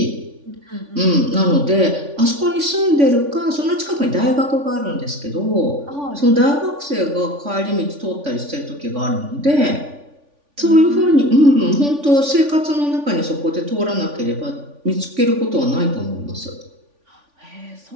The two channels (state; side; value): late; left; 3.5 ms